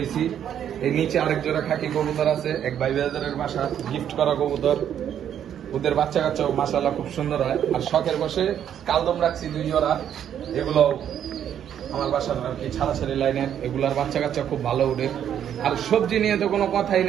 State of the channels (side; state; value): left; quieter; 9.6 dB